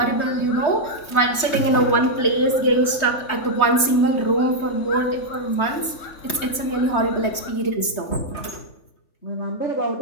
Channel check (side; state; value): right; late; 3.2 ms